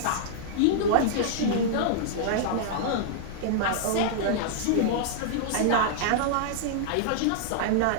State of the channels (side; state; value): both; different; correlation -0.01